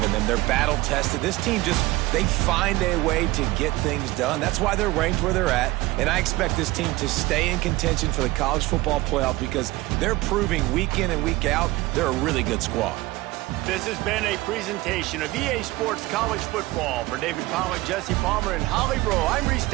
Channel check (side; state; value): left; quieter; 19.9 dB